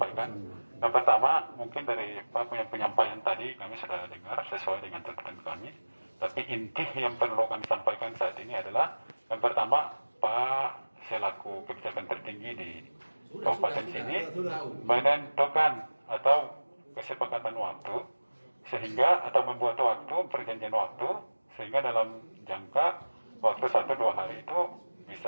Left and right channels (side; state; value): both; inverted; correlation -1.00